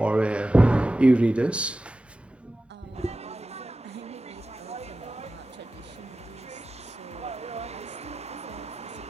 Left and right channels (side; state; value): both; normal; correlation 0.94